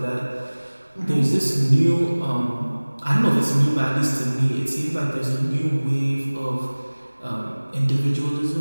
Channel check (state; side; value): inverted; both; correlation -1.00